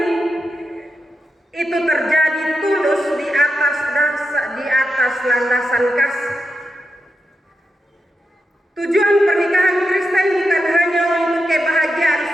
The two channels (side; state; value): both; normal; correlation 0.87